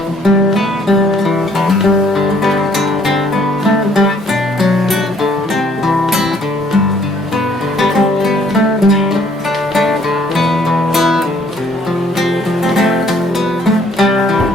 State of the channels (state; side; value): normal; both; correlation 0.63